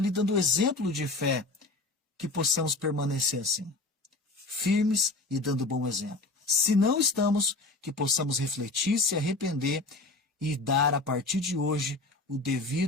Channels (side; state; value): right; quieter; 3.2 dB